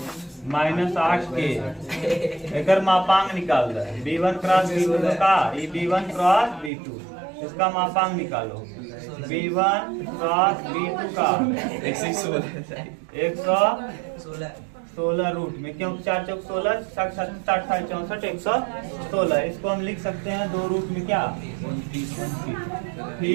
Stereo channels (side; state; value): left; drops out; at 6.7 s